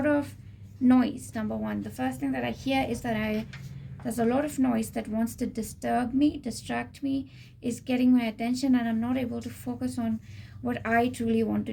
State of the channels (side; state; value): both; identical; correlation 1.00